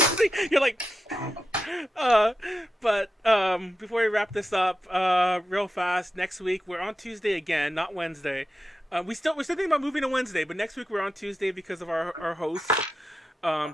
you're like, but before we wrap this up, real fast. Next week we're on Tuesday again, not Wednesday. We're still thinking about moving to Wednesday, but next week we're on Tuesday because of our hosts.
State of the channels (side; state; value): both; normal; correlation 0.89